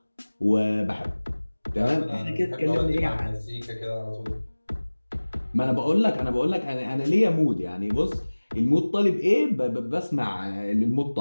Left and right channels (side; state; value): both; inverted; correlation -1.00